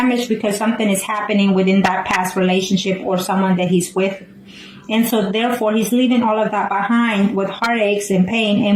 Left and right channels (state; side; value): identical; both; correlation 1.00